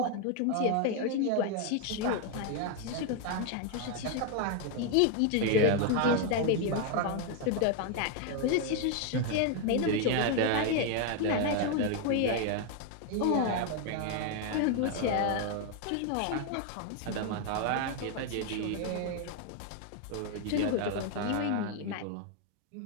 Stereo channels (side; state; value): both; different; correlation 0.01